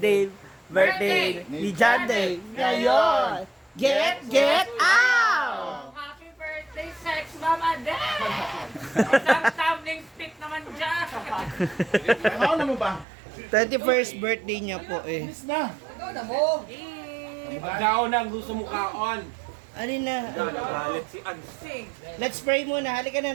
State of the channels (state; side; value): drops out; left; at 13.1 s